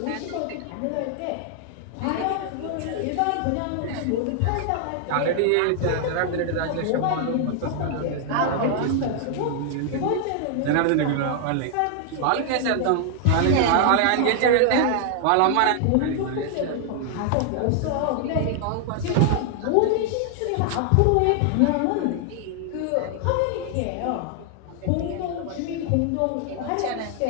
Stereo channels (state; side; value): different; both; correlation 0.00